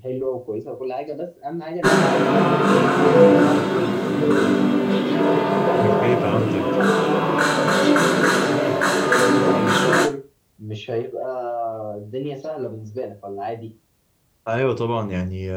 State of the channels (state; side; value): identical; both; correlation 1.00